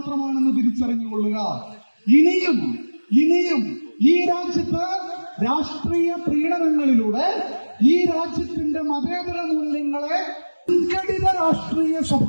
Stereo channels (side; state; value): both; inverted; correlation -1.00